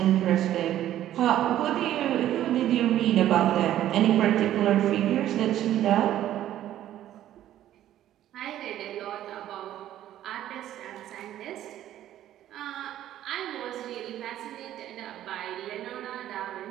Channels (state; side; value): quieter; left; 12.4 dB